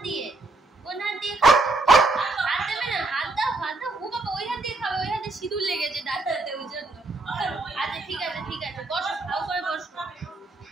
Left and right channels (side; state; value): left; quieter; 3.2 dB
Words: দিয়ে? কোন হাত দিয়ে খাবে? হাত দেবে না? হাত দাও হাত দাও। ও বাবা ওই হাত দিয়ে খাবে, ওই হাতে সিঁদুর লেগেছে দাঁড়াতে ওই জন্য। আচ্ছা ঠিক আছে ঠিক আছে, বসো ভালো করে বসো।